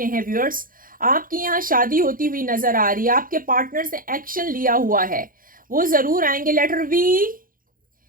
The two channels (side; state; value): left; late; 0.41 ms